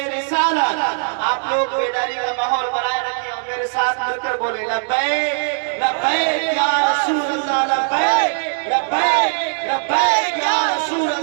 رسالت۔ آپ لوگ بیداری کا ماحول بنائے رکھیں اور میرے ساتھ مل کر بولے لبیک لبیک یا رسول اللہ، لبیک لبیک لبیک یا رسول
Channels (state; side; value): silent; left; digital silence